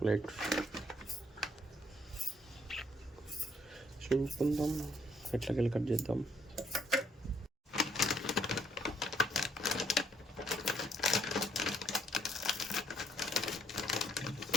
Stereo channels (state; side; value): normal; both; correlation 0.70